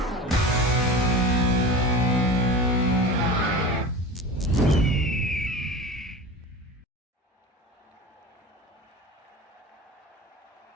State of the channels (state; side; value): normal; both; correlation 0.32